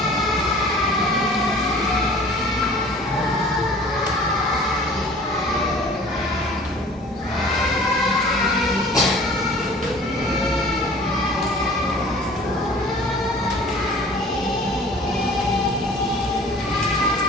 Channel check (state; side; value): normal; both; correlation 0.48